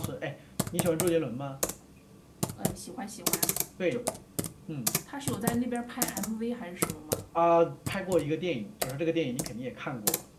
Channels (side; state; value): both; identical; correlation 1.00